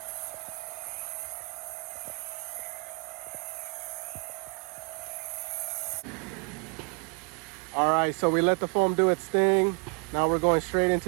All right, so we let the foam do its thing. Now we're going straight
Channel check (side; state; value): left; quieter; 32.4 dB